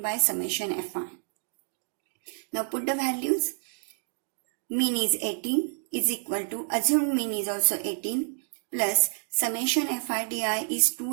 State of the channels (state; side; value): silent; left; 59 dB below the other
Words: by summation fi. Now put the values. Mean is 18 is equal to assumed mean is also 18 plus summation fi di is